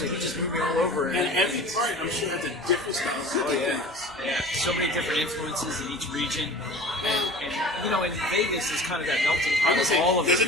he just moved me all over. And every part, I'm sure, has a different style. Oh yeah, so many different influences in each region, and in Vegas is kind of that melting pot of all of it.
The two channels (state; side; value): normal; both; correlation 0.40